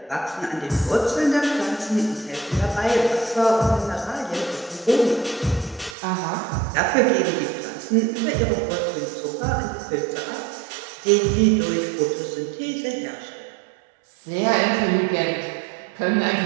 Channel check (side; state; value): left; drops out; at 6.0 s